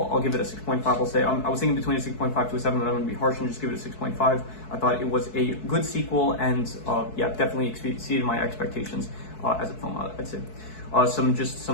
I'll give it a 6.5. I'll say I was thinking between a 6.5 to a 7, but I'm going to be harsh and just give it a 6.5. I thought it was a good sequel, and yeah, definitely exceeded my expectations as a film, I'd say.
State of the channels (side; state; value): right; late; 4.6 ms